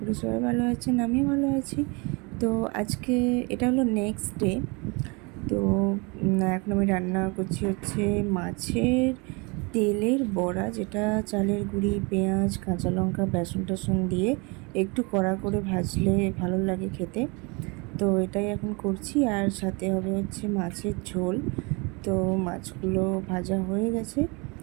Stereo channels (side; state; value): left; quieter; 29.4 dB